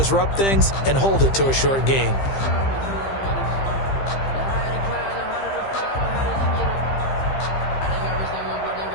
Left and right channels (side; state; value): right; late; 15 ms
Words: things and hold it to a short gain.